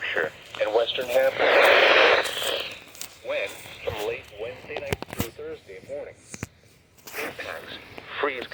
and Western Hampshire. When? From late Wednesday night through Thursday morning. Impacts. Freeze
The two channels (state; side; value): identical; both; correlation 1.00